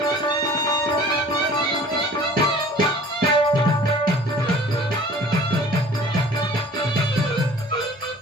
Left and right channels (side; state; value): both; normal; correlation 0.47